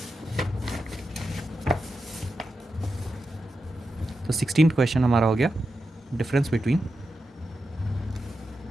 तो 16th क्वेश्चन हमारा हो गया difference between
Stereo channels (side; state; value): both; normal; correlation 0.89